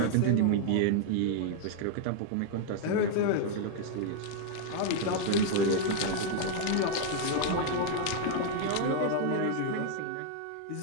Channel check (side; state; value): both; different; correlation 0.00